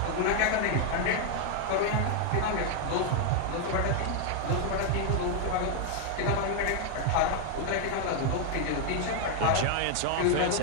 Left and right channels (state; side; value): different; both; correlation 0.00